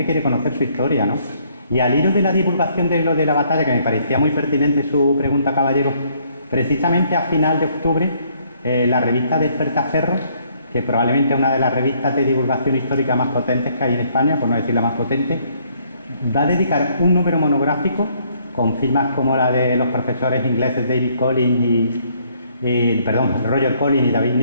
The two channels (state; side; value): inverted; both; correlation -0.66